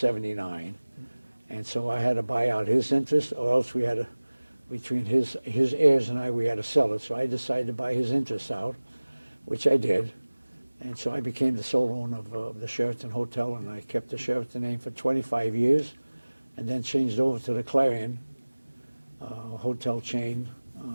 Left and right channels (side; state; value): both; inverted; correlation -1.00